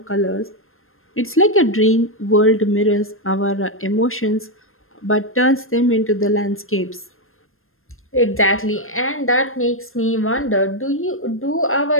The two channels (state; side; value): late; right; 0.60 ms